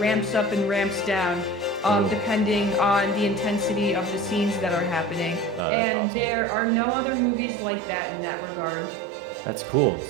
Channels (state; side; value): drops out; left; at 5.6 s